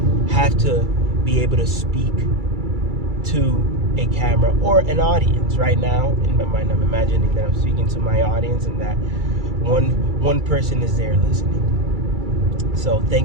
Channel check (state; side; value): late; left; 2.3 ms